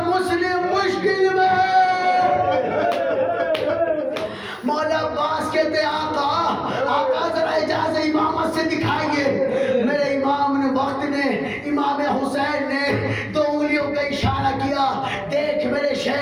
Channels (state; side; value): identical; both; correlation 1.00